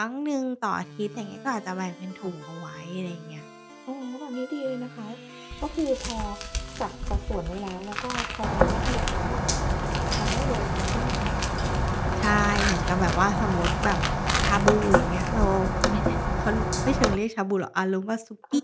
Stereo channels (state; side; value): identical; both; correlation 1.00